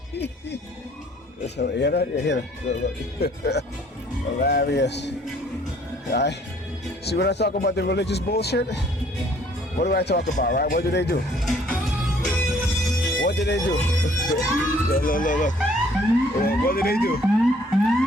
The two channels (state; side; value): normal; both; correlation 0.59